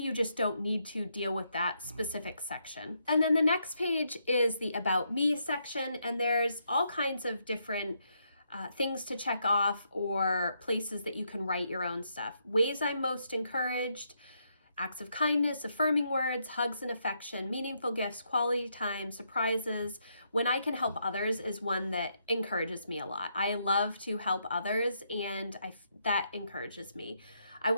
just don't need to deal with that specific section. And then the next page is the About Me section, and there's all kinds of different things to check off, or places that you can write your own stuff. Ways I'm most encouraged: acts of kindness, affirming words, hugs and affection, meaningful gifts, quality time, surprises. When I can help others is one that encourages me a lot. I love to help others, and that encourages me. I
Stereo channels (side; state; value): both; inverted; correlation -0.77